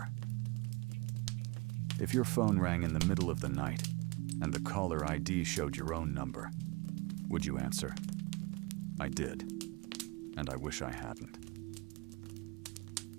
If your phone rang in the middle of the night, and the caller ID showed your own number, would you answer? I did, and I wish I hadn't.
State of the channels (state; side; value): quieter; left; 25.5 dB